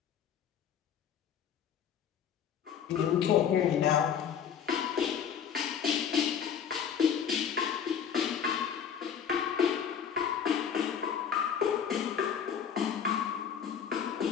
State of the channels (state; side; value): quieter; right; 8.0 dB